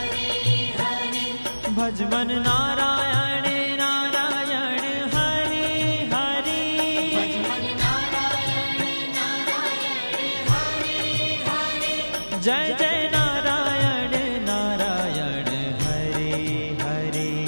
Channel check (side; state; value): both; inverted; correlation -1.00